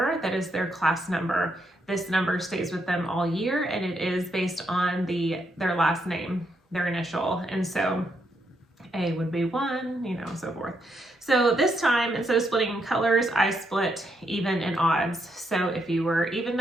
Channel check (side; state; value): both; normal; correlation 0.78